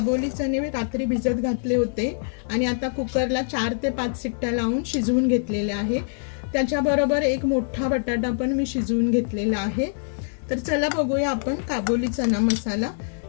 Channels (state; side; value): silent; right; digital silence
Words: चणे रात्री भिजत घातले होते आणि आता कुकरला 4 ते 5 शिट्ट्या लावून शिजवून घेतलेले आहे। त्याच्याबरोबर एक मोठा बटाटा पण मी शिजवून घेतलेला आहे। तर चला बघूया आपण काबोली चना मसाला।